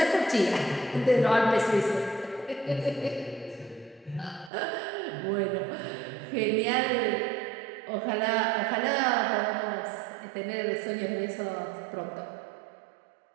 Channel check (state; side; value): drops out; left; at 4.5 s